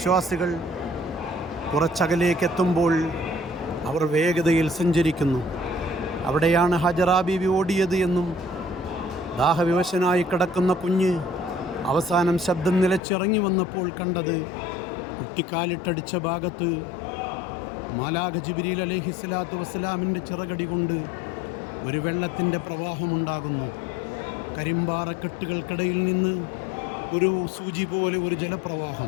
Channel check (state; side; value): drops out; right; at 13.0 s